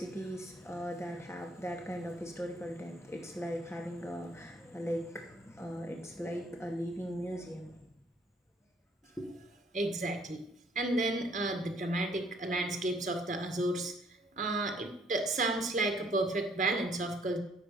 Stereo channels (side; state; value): both; normal; correlation 0.63